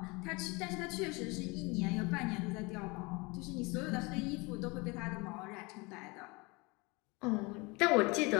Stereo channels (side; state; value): right; quieter; 26.3 dB